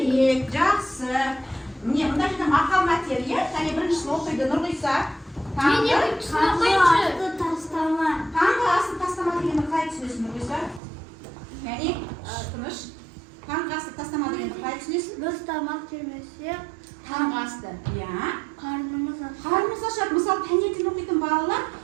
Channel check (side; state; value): left; drops out; at 10.8 s